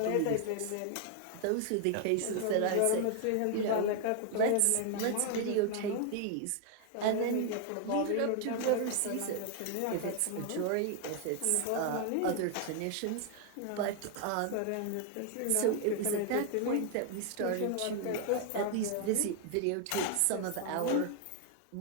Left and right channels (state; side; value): different; both; correlation 0.00